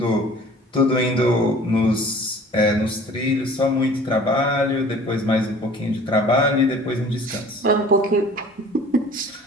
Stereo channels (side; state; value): both; normal; correlation 0.48